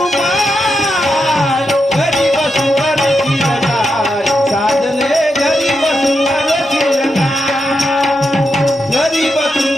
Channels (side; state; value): both; normal; correlation 0.85